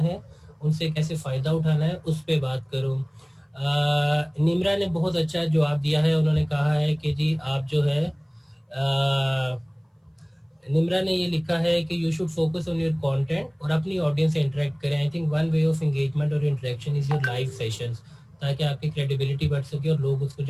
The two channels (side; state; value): both; identical; correlation 1.00